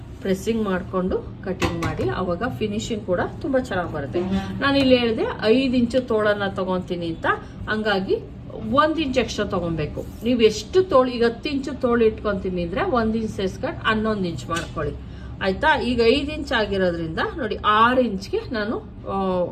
ಪ್ರೆಸ್ಸಿಂಗ್ ಮಾಡ್ಕೊಂಡು ಕಟಿಂಗ್ ಮಾಡಿ, ಅವಾಗ ಫಿನಿಶಿಂಗ್ ಕೂಡ ತುಂಬಾ ಚೆನ್ನಾಗಿ ಬರುತ್ತೆ. ನಾನು ಇಲ್ಲಿ ಹೇಳಿದೆ 5 ಇಂಚು ತೋಳನ್ನ ತಗೊಂತೀನಿ ಅಂತ, ಹಂಗಾಗಿ 1 ಇಂಚ್ ಎಕ್ಸ್ಟ್ರಾ ತಗೊಬೇಕು. ನೀವು ಎಷ್ಟು ತೋಳು, ಈಗ 10 ಇಂಚು ತೋಳು ಇಟ್ಕೊಂತೀನಿ ಅಂದ್ರೆ 1 ಇಂಚ್ ಸೇರ್ಸ್ಕೊಂಡು 11 ಇಂಚ್ ಮಾಡ್ಕೊಳ್ಳಿ ಆಯ್ತಾ. ಈಗ 5 ಇಂಚ್ ಆಗಿರೋದ್ರಿಂದ ನೋಡಿ 6 ಇಂಚ್ಗೆ ನಾನು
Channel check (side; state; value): both; identical; correlation 1.00